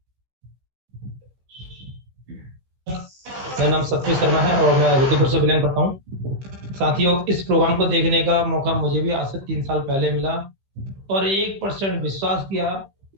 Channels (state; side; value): late; left; 15 ms